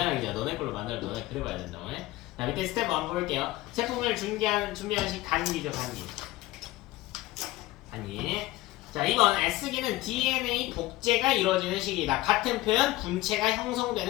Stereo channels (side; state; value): right; quieter; 17.8 dB